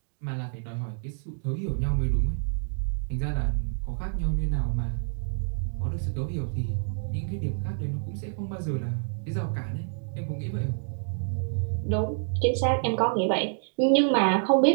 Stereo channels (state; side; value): silent; left; digital silence